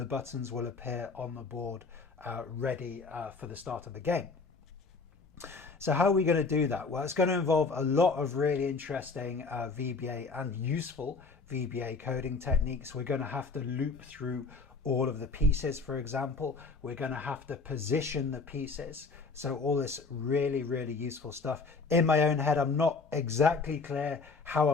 buttons will appear on the board ready for the start of the game. So how are we going to do that? Well, it's going to involve a lot of really interesting VBA and useful VBA coding techniques. We're going to have to loop through all of the pieces, for example. We're going to have to position the pieces. So all this really useful stuff. In my own head, I'm not exactly clear how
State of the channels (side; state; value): right; quieter; 4.3 dB